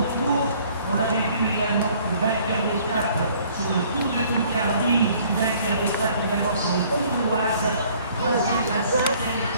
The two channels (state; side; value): inverted; both; correlation -0.58